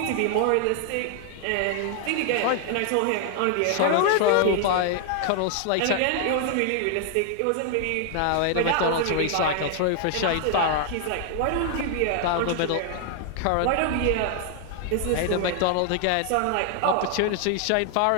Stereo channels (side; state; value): both; different; correlation 0.00